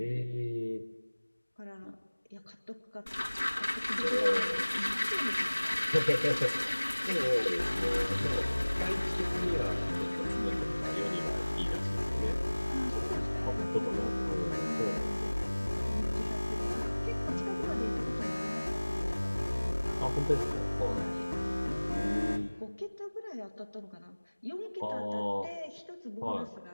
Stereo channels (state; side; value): inverted; both; correlation -1.00